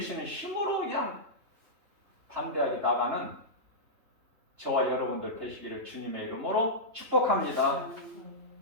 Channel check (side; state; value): left; late; 3.5 ms